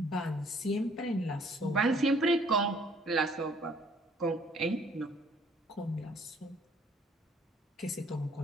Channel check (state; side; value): normal; both; correlation 0.60